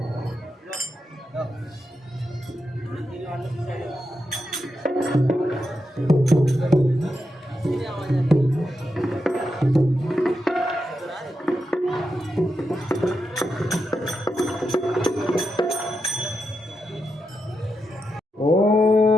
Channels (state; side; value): normal; both; correlation 0.86